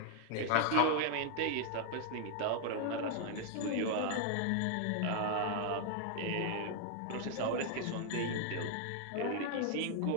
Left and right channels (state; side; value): different; both; correlation 0.00